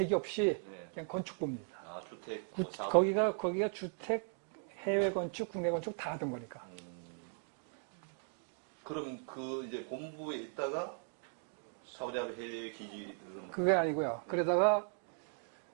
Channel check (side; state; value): left; silent; 53 dB below the other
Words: 없이 그냥 건축부입니다. 주택. 거기가 주택, 해외 건축, 국내 건축 다 하던 거니까. 그럼 그 이제 본부에 있다가 사우디아라비아 해외 기지를 그게 아니고요. 그러다가